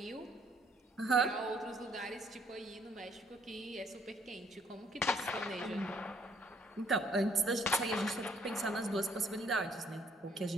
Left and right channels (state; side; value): normal; both; correlation 0.65